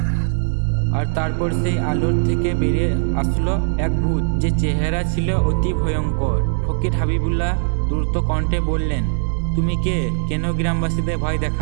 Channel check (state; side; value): silent; left; digital silence